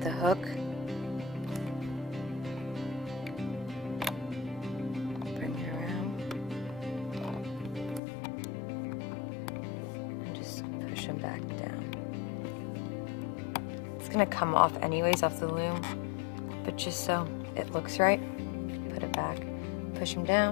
the hook. Bring it around and just push them back down. It's going to come off anyways off the loom, but just so it looks right, put it back. Push them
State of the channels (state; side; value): drops out; right; at 8.0 s